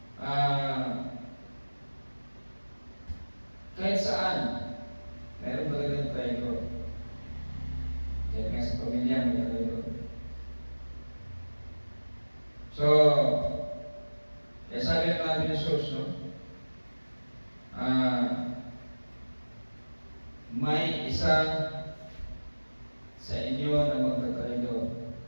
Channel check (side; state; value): both; inverted; correlation -1.00